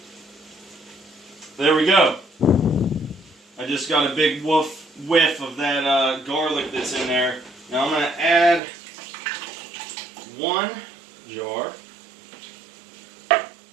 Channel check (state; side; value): drops out; left; at 8.6 s